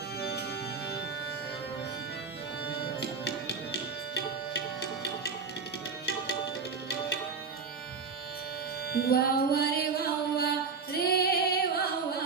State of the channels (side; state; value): left; quieter; 5.1 dB